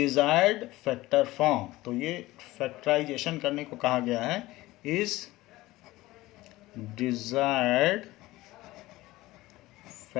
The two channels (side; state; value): right; quieter; 18.3 dB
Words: factor form. तो ये फैक्टराइजेशन करने को कहा गया है, इज डिजायर्ड